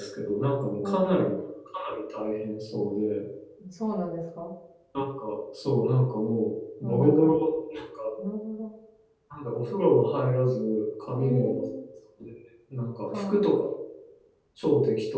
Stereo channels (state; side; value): identical; both; correlation 1.00